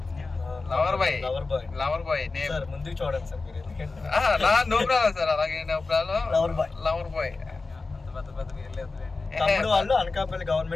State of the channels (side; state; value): right; quieter; 3.8 dB